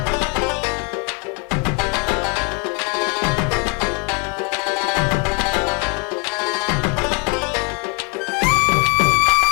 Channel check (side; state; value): right; quieter; 32.9 dB